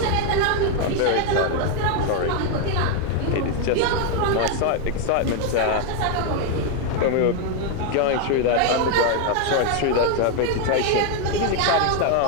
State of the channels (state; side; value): different; both; correlation 0.01